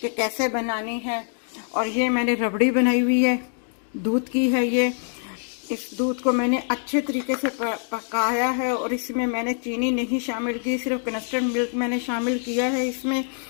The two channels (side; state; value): right; silent; 61 dB below the other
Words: कि कैसे बनानी है। और ये मैंने रबड़ी बनाई हुई है, दूध की है ये। इस दूध को मैंने अच्छे तरीके से पकाया है, और इसमें मैंने चीनी नहीं शामिल की, सिर्फ कस्टर्ड मिल्क मैंने शामिल किया है इसमें,